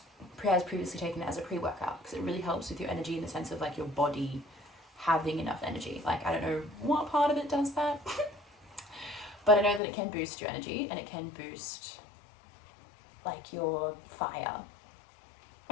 has previously taken it as a pre-workout, because it really helps with your energy in the sense of like your body having enough energy. Like, I don't know what part of it does that, but I know that it can boost your energy and it can boost like your fire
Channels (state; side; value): drops out; right; at 9.8 s